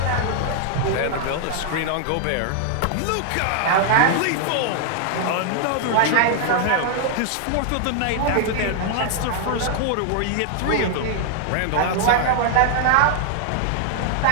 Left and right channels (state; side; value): different; both; correlation 0.00